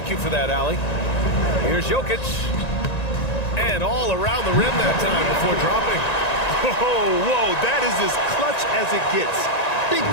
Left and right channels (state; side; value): late; right; 1.9 ms